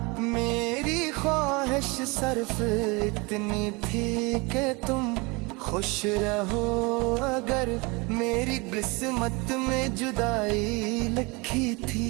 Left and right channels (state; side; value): quieter; left; 26.9 dB